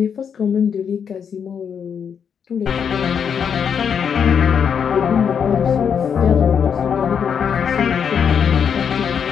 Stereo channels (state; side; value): quieter; right; 7.3 dB